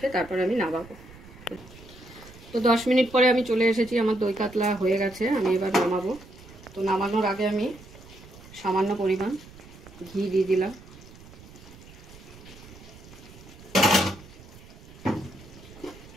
তারপর আমি নামাবো। তো 10 মিনিট পরে আমি চলে এসেছি, আমার দই কাতলা হয়ে গেছে। আমি এবার নামাবো। তো নামানোর আগে আমি সামান্য পরিমাণ ঘি দিয়ে দিলাম।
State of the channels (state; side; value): noise; right; rumble, 19 dB below the sound